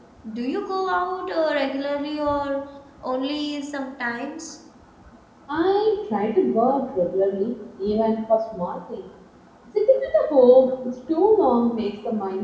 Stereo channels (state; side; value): identical; both; correlation 1.00